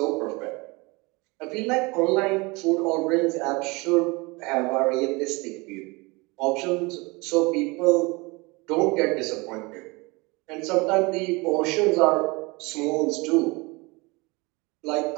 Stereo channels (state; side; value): quieter; left; 25.7 dB